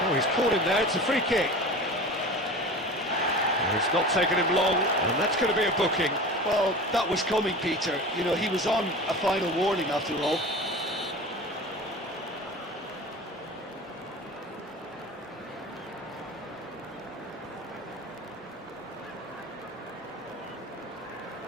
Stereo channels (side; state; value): both; normal; correlation 0.35